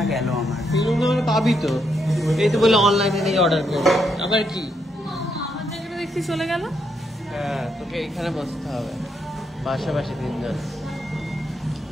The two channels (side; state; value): both; normal; correlation 0.78